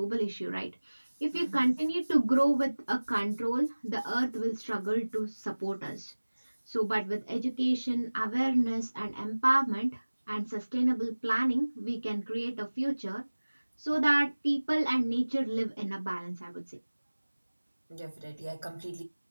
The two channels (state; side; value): inverted; both; correlation -1.00